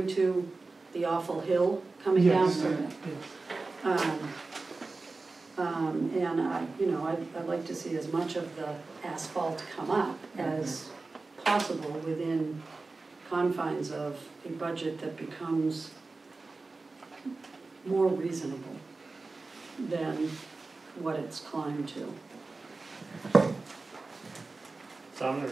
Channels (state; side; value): quieter; left; 3.6 dB